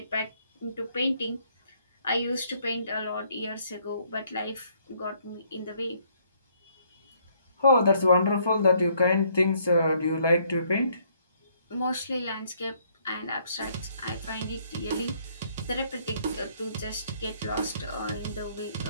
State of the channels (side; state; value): both; inverted; correlation -0.67